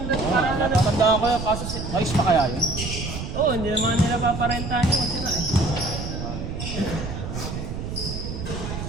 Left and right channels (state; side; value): noise; right; rumble, 6 dB below the sound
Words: Oo, para na lang. natatandaan ko yun, kaso ayos pa kaya yun? Oo, hindi naman nila paparentahan yung sira eh.